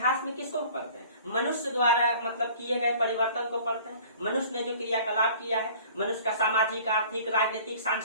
में किसको पढ़ते हैं, मनुष्य द्वारा मतलब किए गए परिवर्तन को पढ़ते हैं, मनुष्य ने जो क्रियाकलाप किया है, मनुष्य का सामाजिक, आर्थिक, राजनीतिक,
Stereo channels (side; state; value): both; inverted; correlation -0.49